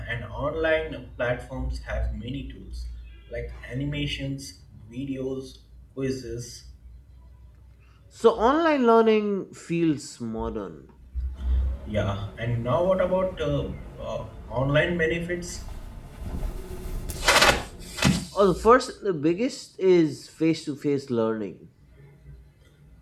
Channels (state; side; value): identical; both; correlation 1.00